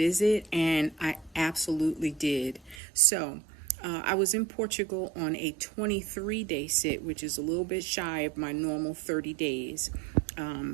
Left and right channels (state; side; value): drops out; left; at 2.8 s